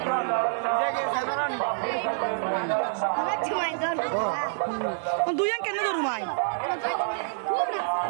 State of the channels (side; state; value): left; silent; digital silence